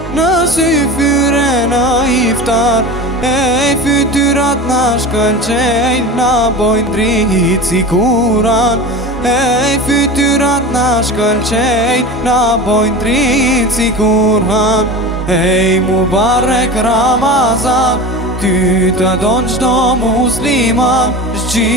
në sy fyre në iftar. Ej, fytyrat na shkëlqejnë, na bojnë dritë si kuran. Ej, fytyrat na shkëlqejnë, na bojnë dritë si kuran. Ej, Mubarak Ramazan, ty të donë qdo musliman,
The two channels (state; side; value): normal; both; correlation 0.31